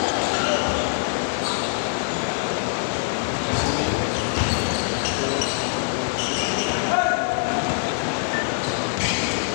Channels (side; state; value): right; silent; digital silence